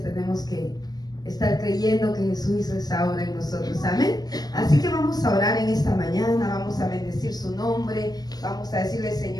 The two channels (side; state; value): right; late; 0.19 ms